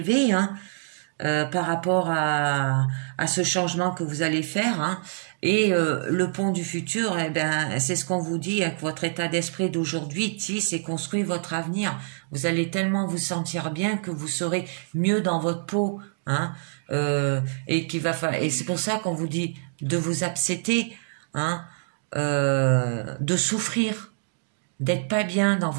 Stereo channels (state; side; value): silent; left; digital silence